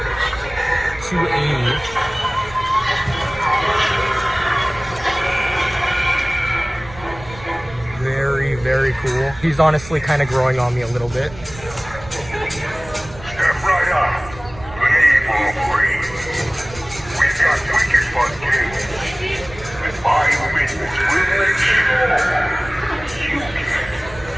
$280. Very, very cool. He's honestly kind of growing on me a little bit. Step right up. Leave or breathe. We've got wicked fun games. And my witness will make sure you get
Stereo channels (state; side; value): noise; right; rumble, 17 dB below the sound